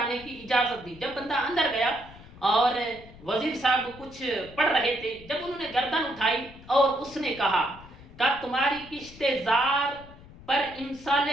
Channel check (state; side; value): noise; left; rumble, 20 dB below the sound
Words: کی اجازت دی. جب بندہ اندر گیا اور وزیر صاحب کچھ پڑھ رہے تھے، جب انہوں نے گردن اٹھائی اور اس نے کہا کہ تمہاری کشت زار پر امسال